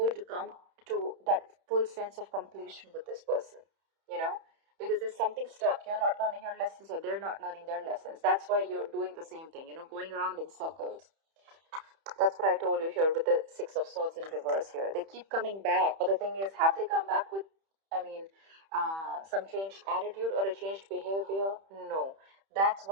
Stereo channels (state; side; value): late; left; 31 ms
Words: to come to that full sense of completion with this person, you know? Because there's something stuck. You're not learning your lessons or they're not learning their lessons. That's why you're doing the same thing, you know, going around in circles. That's what I told you here with the Six of Swords in reverse here. They keep coming back. But the thing is, have they come back with, some changed attitude or a changed behavior? No. That's